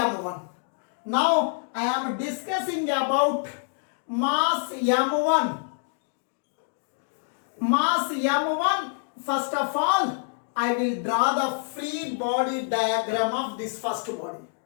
Now, I am discussing about mass m1. Mass m1, first of all, I will draw the free body diagram of this first body.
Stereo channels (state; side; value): silent; right; 61 dB below the other